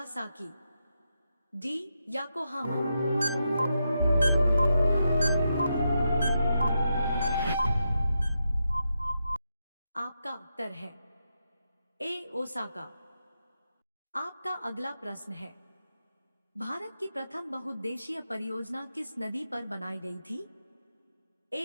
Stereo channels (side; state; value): both; inverted; correlation -0.85